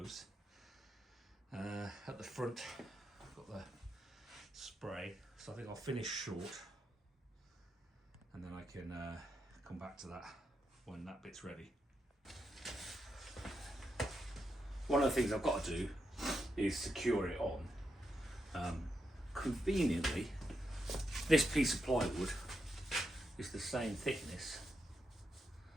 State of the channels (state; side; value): normal; both; correlation 0.84